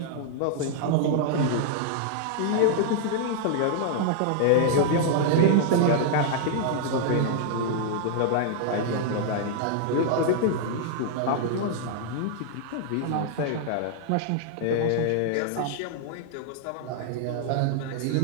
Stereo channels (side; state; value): both; different; correlation -0.01